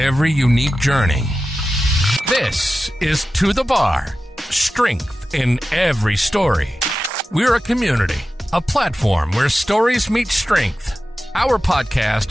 unique journey. This is To The Bar, strength in every story. We're a community, a platform where stories meet strength. Our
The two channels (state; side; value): normal; both; correlation 0.93